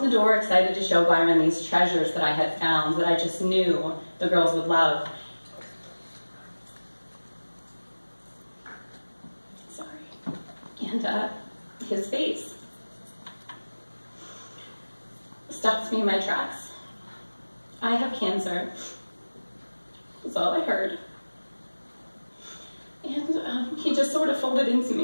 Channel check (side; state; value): both; inverted; correlation -1.00